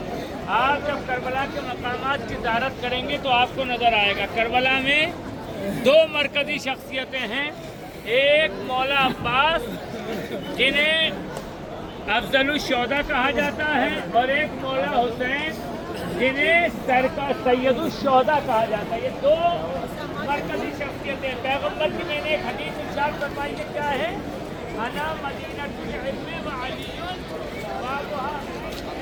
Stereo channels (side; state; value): both; identical; correlation 1.00